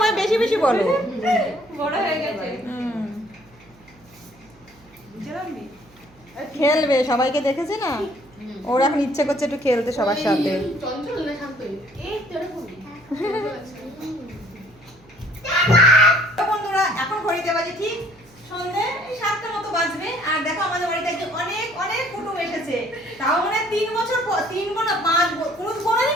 বেশি বেশি বলো। বড় হয়ে গেছে খেলবে, সবাইকে দেখেছে না, ওর এখন ইচ্ছে করছে একটু খেলতে সবার সাথে। চঞ্চল না শান্ত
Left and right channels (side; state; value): right; noise; hum, 27 dB below the sound